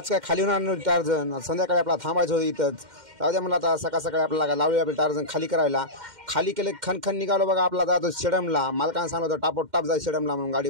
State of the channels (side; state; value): left; late; 2.1 ms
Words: काय खाली होणार नव्हती टार्झन, संध्याकाळी आपला थांबायचं होतं इथंच. जाऊ द्या म्हणलं आता सकाळ सकाळी आपल्याला लावली आपलं टार्झन खाली करायला. खाली केले खणखण निघालो बघा आपला जातो शेडमला. मालकानं सांगलं होतं टापोटाप जाय शेडमला म्हणून, गाडी